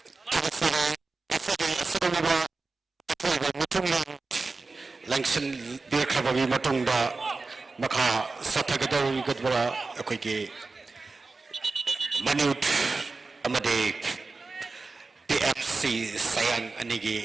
ꯑꯁꯤꯒꯨꯝꯂꯕ ꯑꯊꯣꯏꯕ ꯃꯤꯊꯨꯡꯂꯦꯟ ꯂꯪꯁꯤꯟꯕꯤꯔꯈ꯭ꯔꯕꯒꯤ ꯃꯇꯨꯡꯗ ꯃꯈꯥ ꯆꯠꯊꯒꯗꯧꯔꯤꯕ ꯑꯩꯈꯣꯏꯒꯤ ꯃꯅꯤꯎꯠ ꯑꯃꯗꯤ BFC ꯁꯌꯥꯡ ꯑꯅꯤꯒꯤ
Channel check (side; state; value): left; quieter; 3.8 dB